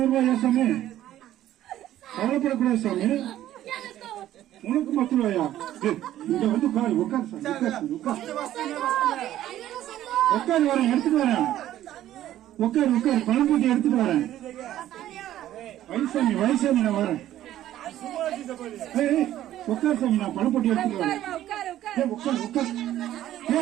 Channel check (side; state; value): left; quieter; 12.9 dB